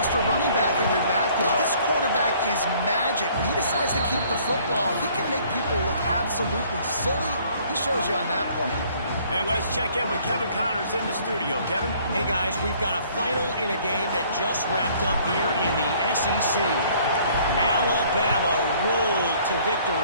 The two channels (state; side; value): inverted; both; correlation -0.58